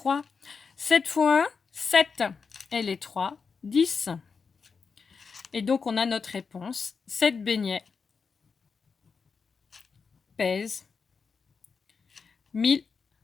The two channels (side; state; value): right; quieter; 5.4 dB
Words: 7 fois 1, 7. Et les 3, 10. Et donc, on a notre réponse. 7 beignets pèsent